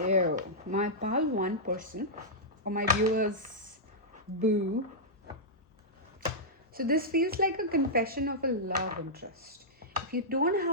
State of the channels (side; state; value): both; normal; correlation -0.10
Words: my pal 1 person, or my viewers, boo. So this feels like a confession of a love interest. If you don't